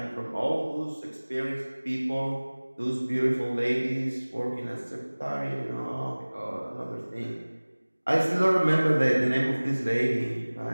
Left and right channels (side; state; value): both; inverted; correlation -1.00